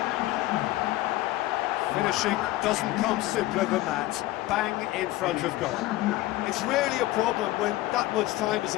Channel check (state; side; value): quieter; right; 17.1 dB